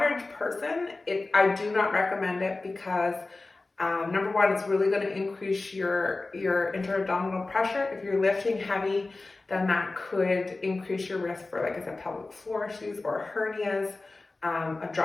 person, I do not recommend it, because number one, it's really going to increase your intra-abdominal pressure. If you're lifting heavy, then that could increase your risk for, like I said, pelvic floor issues or hernias, a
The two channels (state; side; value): quieter; right; 3.3 dB